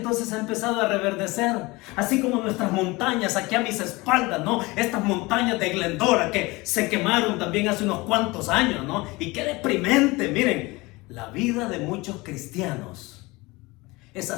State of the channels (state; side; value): quieter; right; 22.9 dB